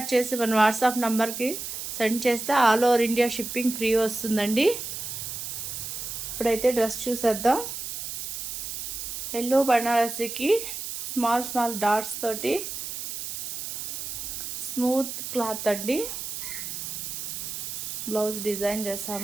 చేసి మన వాట్సాప్ నంబర్కి సెండ్ చేస్తే all over India shipping free వస్తుందండి. ఇప్పుడైతే డ్రెస్ చూసేద్దాం. ఎల్లో బనారసీకి స్మాల్ డాట్స్ తోటి స్మూత్ క్లాత్ అండి. బ్లౌజ్ డిజైన్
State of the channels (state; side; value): noise; right; hiss, 6 dB below the sound